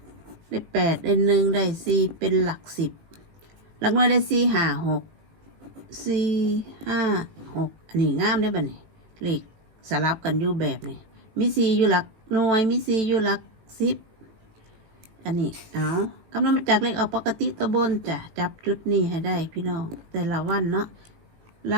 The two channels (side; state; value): left; late; 18 ms